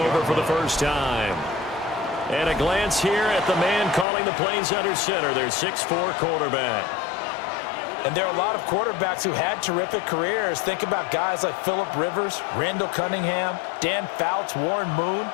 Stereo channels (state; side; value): drops out; right; at 4.0 s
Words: for the first time. And a glance here at the man calling the plays under center, their 6'4" quarterback. And there are a lot of quarterbacks who had terrific careers. Think about guys like Phillip Rivers, Randall Cunningham, Dan Fouts, Warren Moon.